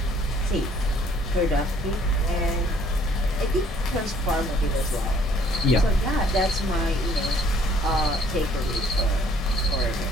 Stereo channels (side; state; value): both; normal; correlation 0.60